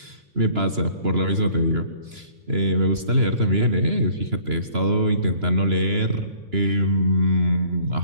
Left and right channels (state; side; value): late; left; 2.9 ms